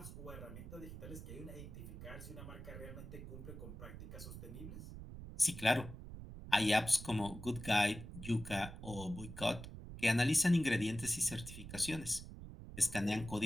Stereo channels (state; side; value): noise; right; rumble, 11 dB below the sound